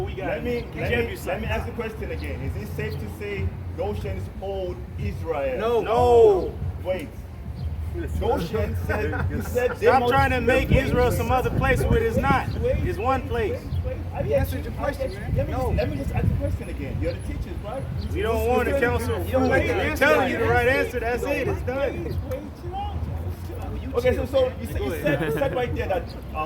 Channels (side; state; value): both; identical; correlation 1.00